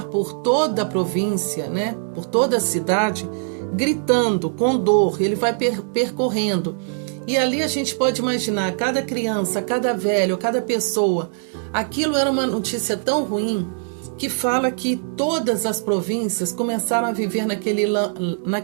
por toda a província, né? Por toda a cidade, gritando com dor. Ele vai percorrendo. E ali a gente pode imaginar, cada criança, cada velho, cada pessoa. Aquilo era uma notícia tão ruim que fala que todas as províncias começaram a viver naquele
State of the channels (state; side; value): silent; left; digital silence